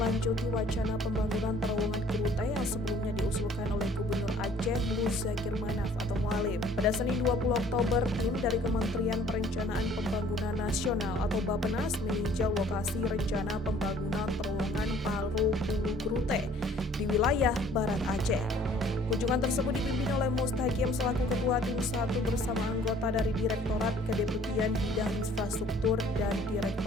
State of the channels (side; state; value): both; normal; correlation 0.56